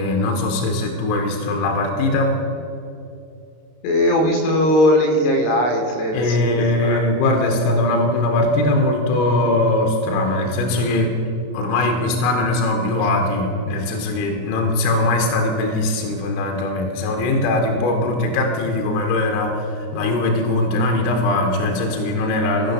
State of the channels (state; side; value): late; right; 33 ms